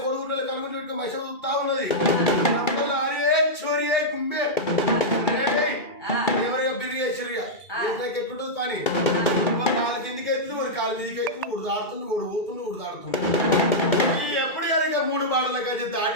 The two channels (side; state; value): right; late; 2.3 ms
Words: కొడుకుంటే కనుగొని పెట్టుకుని మనిషి చూస్తా ఉన్నది అరే చోరీ గుమ్మే ఎవరైనా బిర్రి వేసిరిగా ఎట్లుంటుంది పని కాలు కిందికి ఎత్తుంది వాడు కాలు మీదకి ఎత్తుంది ఊడు దాడుతుంది ఊడు పోతుంది ఊడు దాడుతుంది ఎప్పుడు కనుక 3 బాటల కలిసి